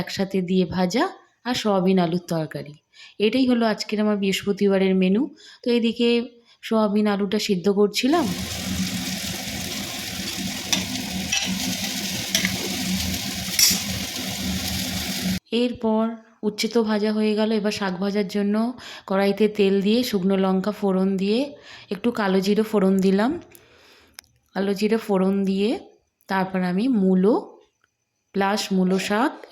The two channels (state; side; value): identical; both; correlation 1.00